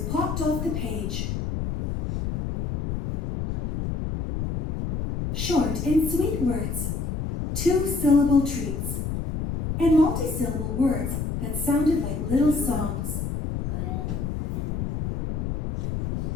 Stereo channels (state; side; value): noise; left; rumble, 3 dB below the sound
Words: popped off the page. Short and sweet words, two-syllable treats, and multi-syllable words that sounded like little songs.